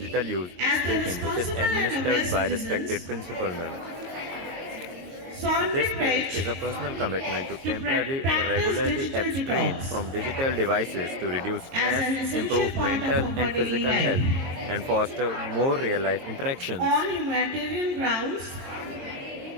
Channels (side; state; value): left; late; 22 ms